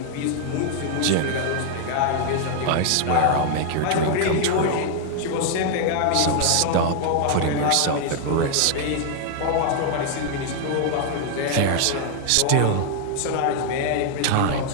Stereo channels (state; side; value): different; both; correlation 0.00